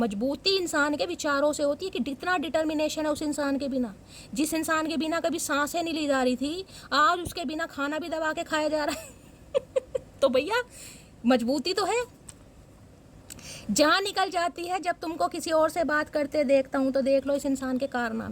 इंसान के विचारों से होती है, कि कितना डिटर्मिनेशन है उस इंसान के बिना, जिस इंसान के बिना कभी सांसें नहीं ली जा रही थी, आज उसके बिना खाना भी दबा के खाया जा रहा है तो भैया मजबूती तो है। जान निकल जाती है जब तुमको किसी और से बात करते देखता हूँ, तो देख लो इस इंसान के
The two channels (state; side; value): identical; both; correlation 1.00